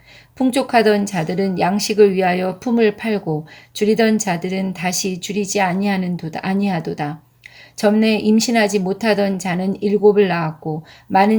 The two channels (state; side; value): identical; both; correlation 1.00